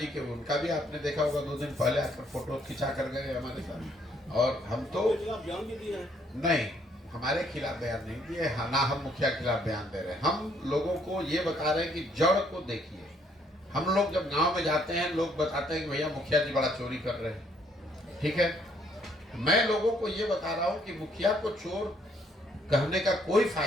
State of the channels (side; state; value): both; normal; correlation 0.67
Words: के, उनका भी आपने देखा होगा 2 दिन पहले आकर फोटो खिंचा कर गए हमारे साथ। और हम तो बयान भी दिया है, नहीं, हमारे खिलाफ बयान नहीं दिए, ना हम मुखिया के खिलाफ बयान दे रहे हैं। हम लोगों को ये बता रहे हैं कि जड़ को देखिए। हम लोग जब गांव में जाते हैं, लोग बताते हैं कि भैया मुखिया जी बड़ा चोरी कर रहे हैं। ठीक है, मैं लोगों को ये बता रहा हूं कि मुखिया को चोर कहने का कोई